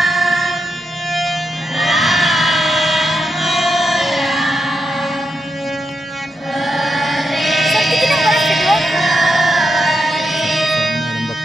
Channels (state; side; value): normal; both; correlation 0.84